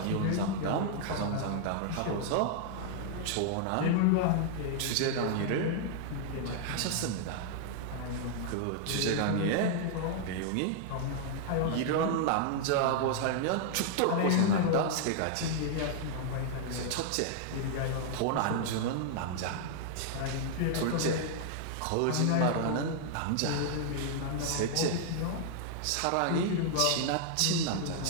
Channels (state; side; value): different; both; correlation -0.01